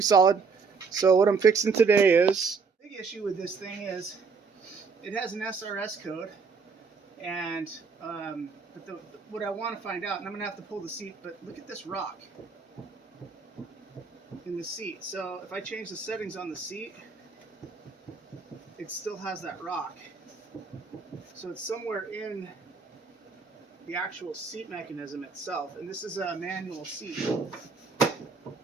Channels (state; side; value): quieter; left; 5.0 dB